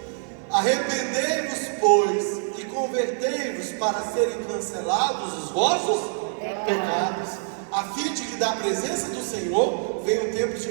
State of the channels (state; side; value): silent; left; 62 dB below the other